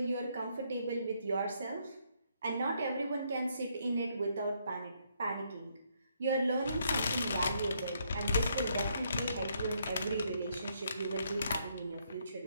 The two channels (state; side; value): inverted; both; correlation -0.73